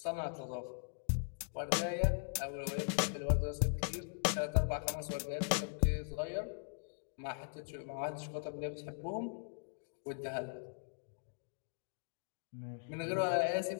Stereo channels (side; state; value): right; silent; digital silence